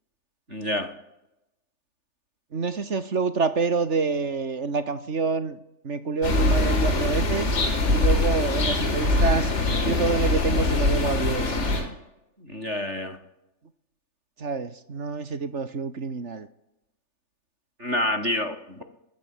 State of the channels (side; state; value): left; late; 3.4 ms